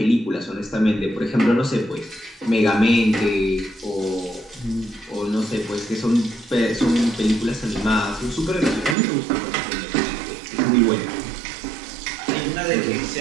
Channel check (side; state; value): left; drops out; at 9.0 s